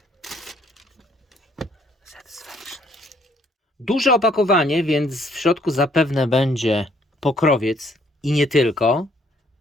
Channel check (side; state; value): both; normal; correlation 0.65